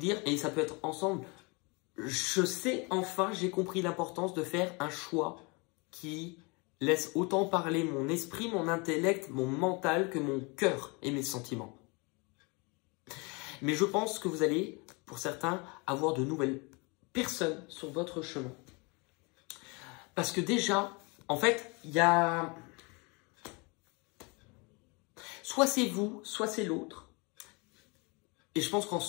et ça peut être ensemble, je sais enfin, j'ai compris l'importance de faire un choix qui laisse autant parler mon esprit, mon intellect, mon mental que mon cœur et mes sentiments. Mais je pense que vous allez, pour certains, avoir de nouvelles personnes sur votre chemin. Parce que déjà, en fait, il y a... Soit c'est vous, soit c'est l'autre. Et je pense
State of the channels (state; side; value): quieter; right; 29.2 dB